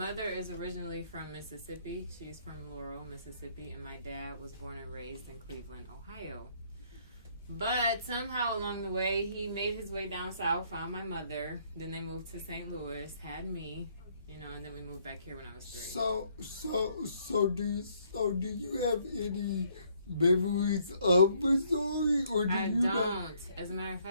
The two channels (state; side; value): inverted; both; correlation -0.67